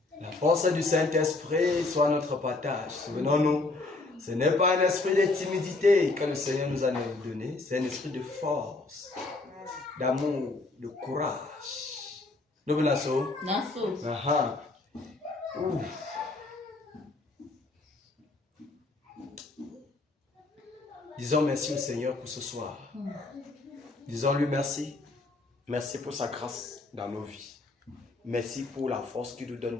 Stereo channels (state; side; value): quieter; right; 3.3 dB